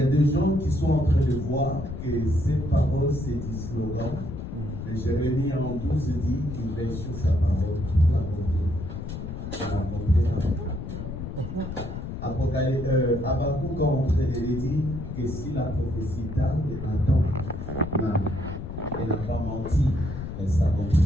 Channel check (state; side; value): noise; left; rumble, 7 dB below the sound